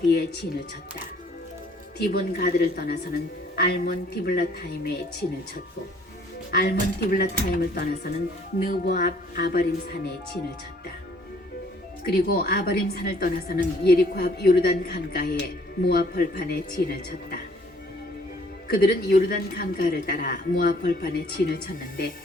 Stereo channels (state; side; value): normal; both; correlation 0.60